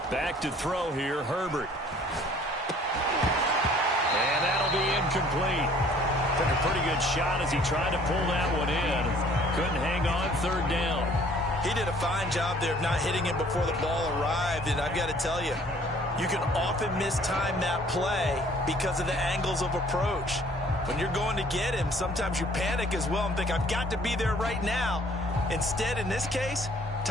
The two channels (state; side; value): normal; both; correlation 0.56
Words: Back to throw here, Herbert. And that'll be incomplete. Took a pretty good shot as he tried to pull that one in. Couldn't hang on 3rd down. He did a fine job there of not hitting it before the ball arrived, and I've got to tell you, you can often mistime that play because of the angles of approach. When you're going to get him, sometimes you panic as well and think, I've got to be there right now. Instead, in this case,